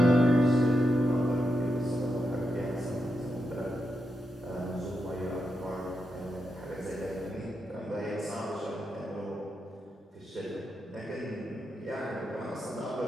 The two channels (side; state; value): both; normal; correlation 0.85